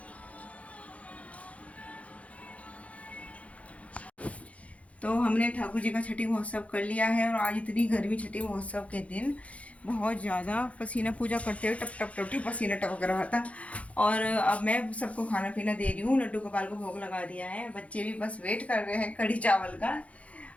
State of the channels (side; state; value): right; late; 0.065 ms